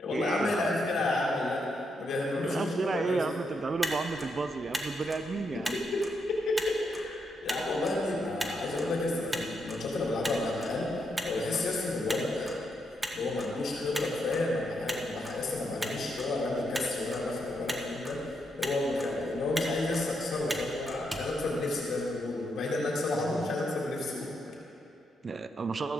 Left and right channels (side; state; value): both; normal; correlation 0.80